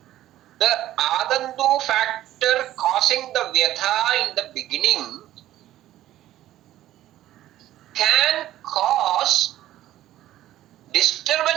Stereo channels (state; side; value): quieter; left; 13.8 dB